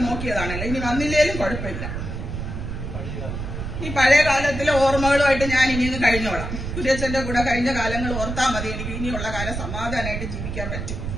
നോക്കിയതാണല്ലോ, ഇനി വന്നില്ലേലും കുഴപ്പമില്ല. ഈ പഴയ കാലത്തിലെ ഓർമ്മകളുമായിട്ട് ഞാൻ ഇനിയൊന്ന് കഴിഞ്ഞോളാം. കുര്യച്ചന്റെ കൂടെ കഴിഞ്ഞ കാലങ്ങൾ ഓർത്താൽ മതി, എനിക്ക് ഇനിയുള്ള കാലം സമാധാനമായിട്ട് ജീവിക്കാൻ പറ്റും.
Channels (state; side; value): noise; right; rumble, 5 dB below the sound